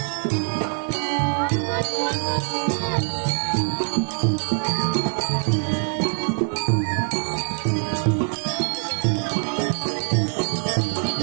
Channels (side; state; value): left; silent; 56 dB below the other